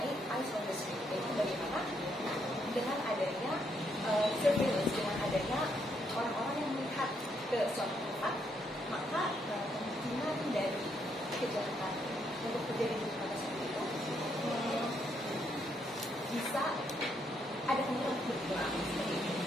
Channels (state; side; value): normal; both; correlation 0.75